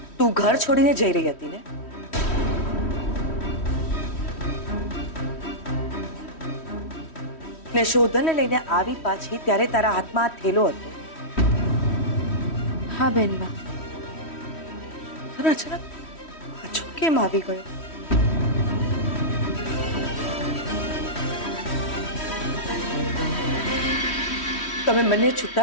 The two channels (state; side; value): late; right; 3.1 ms